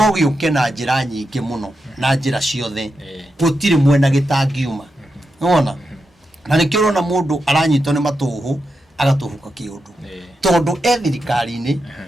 gĩũke na njĩra nyingĩ mũno na njĩra ciothe gũtirĩ mwena gĩtangiuma wona na nĩkĩo ũrona mũndũ aranyitwo nĩ matũhũ agatũhuka kĩũndũ tondũ thirikari-inĩ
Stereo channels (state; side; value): normal; both; correlation 0.87